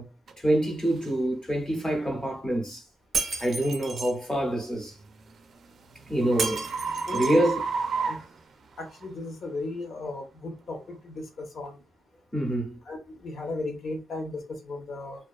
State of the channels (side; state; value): both; normal; correlation 0.87